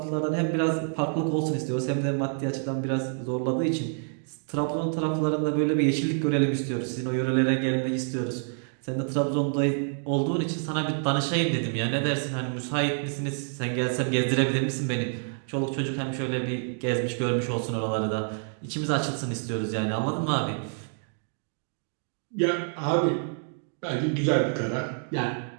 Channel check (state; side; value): silent; left; 60 dB below the other